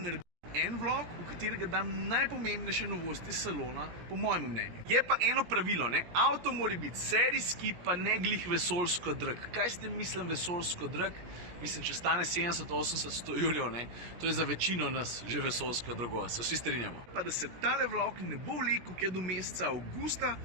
en vlog, v katerega dam najpomembnejše novosti salona, po mojem mnenju. Je pa eno pravilo, ne? Avto mora biti serijski, pa ne glih vesoljsko drag. Kaj ste mislim vesoljsko drag? Mislim, če stane 70-80-100 jurjev, ne? To je za večino nas že vesoljsko drago, se vsi strinjamo. Pa da se tale vlog ne bo vlekel kaj do meseca avgusta,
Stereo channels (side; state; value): left; late; 17 ms